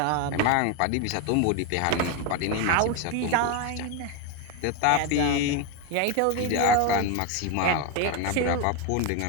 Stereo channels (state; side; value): different; both; correlation 0.02